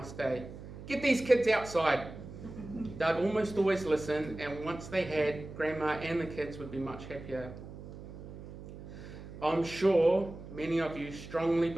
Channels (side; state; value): right; noise; hum, 13 dB below the sound